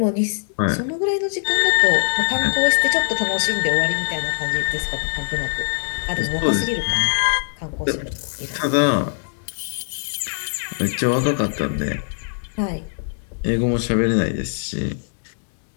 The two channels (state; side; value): silent; right; digital silence